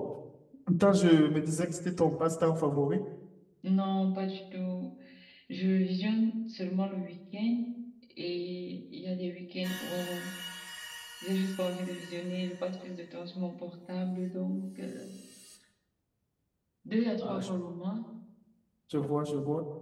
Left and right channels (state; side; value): identical; both; correlation 1.00